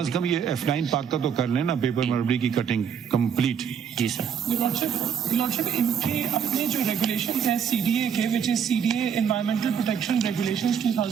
کم یہ F9 پاک کا تو کر لیں نا, پیپر ملبری کی کٹنگ کمپلیٹ. جی سر. لارڈشپ ان کے اپنے جو ریگولیشن ہیں سی ڈی اے کے, which is C D A environmental protection regulations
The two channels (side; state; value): left; quieter; 7.7 dB